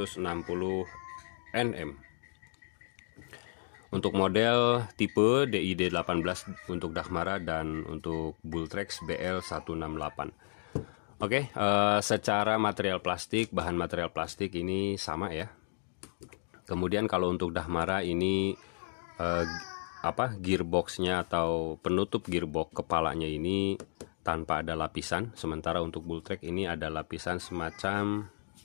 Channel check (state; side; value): silent; right; digital silence